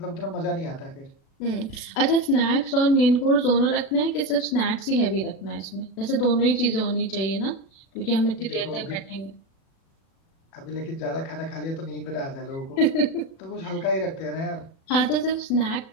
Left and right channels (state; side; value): late; right; 36 ms